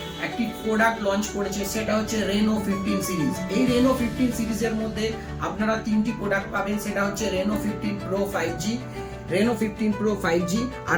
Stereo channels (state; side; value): identical; both; correlation 1.00